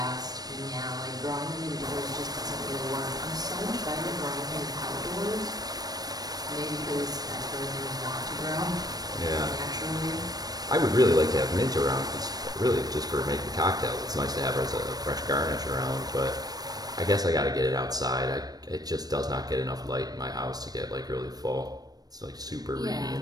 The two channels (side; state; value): left; late; 0.19 ms